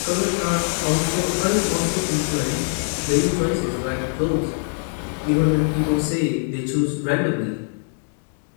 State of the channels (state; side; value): silent; right; 59 dB below the other